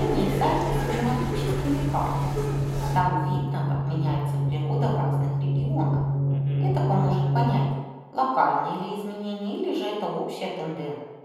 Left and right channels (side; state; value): both; identical; correlation 1.00